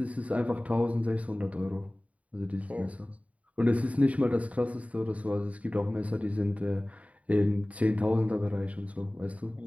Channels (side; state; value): left; late; 0.067 ms